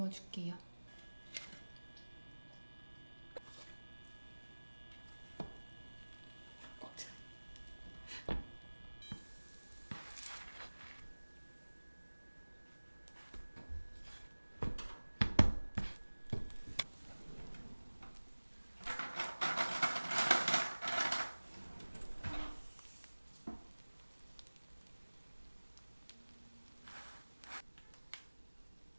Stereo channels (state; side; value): inverted; both; correlation -1.00